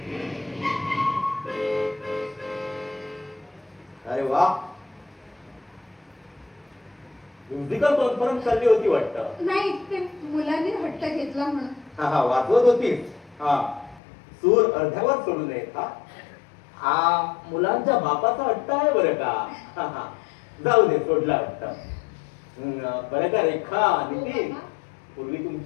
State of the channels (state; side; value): drops out; right; at 14.0 s